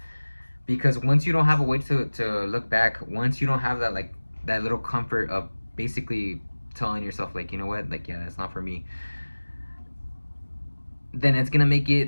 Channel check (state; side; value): inverted; both; correlation -1.00